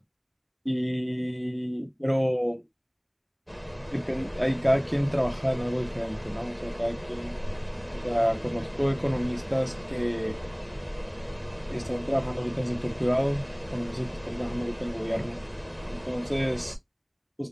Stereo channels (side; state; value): both; identical; correlation 1.00